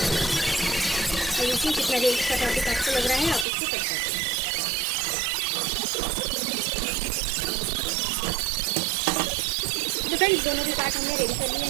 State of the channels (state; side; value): drops out; left; at 3.5 s